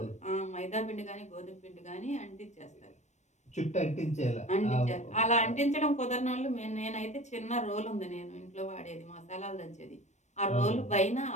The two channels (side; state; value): right; late; 0.34 ms